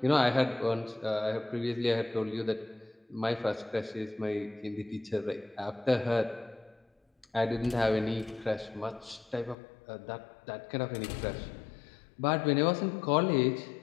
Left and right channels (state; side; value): drops out; right; at 9.6 s